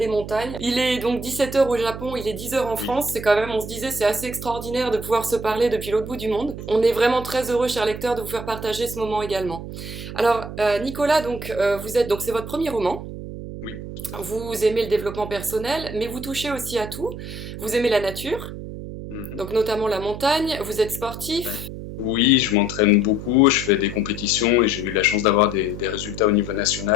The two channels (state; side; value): noise; right; hum, 9 dB below the sound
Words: montagnes. Il est donc 17h au Japon, il est 10h en Oui. France. C'est quand même, on se disait, c'est assez extraordinaire de pouvoir se parler depuis l'autre bout du monde. On est vraiment très heureux, chers lecteurs, de vous faire partager ce moment également. Alors Nicolas, donc vous êtes, donc c'est votre premier roman. Oui. Vous aimez le développement personnel, mais vous touchez aussi à tout. Vous aimez la nature, Mhm. donc notamment la montagne. Vous êtes Ouais. sportif. Oui, je m'entraîne beaucoup, je fais des compétitions et j'ai eu la chance d'avoir des résultats au niveau